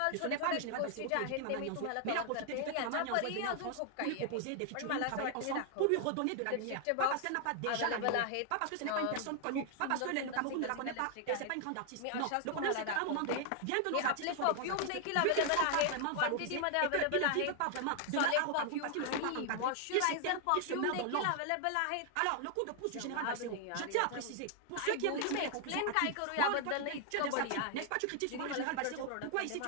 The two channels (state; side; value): different; both; correlation 0.00